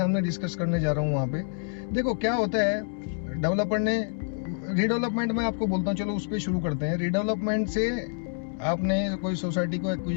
डिस्कस करने जा रहा हूँ वहाँ पे। देखो क्या होता है, डेवलपर ने रीडेवलपमेंट में आपको बोलता हूँ, चलो उस पर शुरू करते हैं। रीडेवलपमेंट से आपने कोई सोसाइटी को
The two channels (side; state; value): right; silent; digital silence